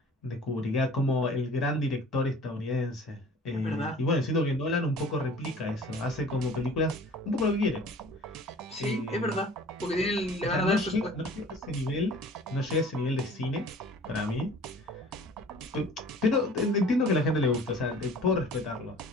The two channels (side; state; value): both; normal; correlation 0.47